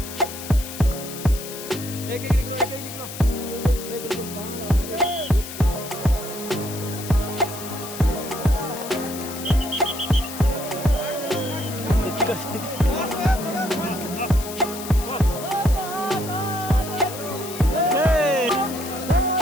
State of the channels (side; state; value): left; noise; hiss, 11 dB below the sound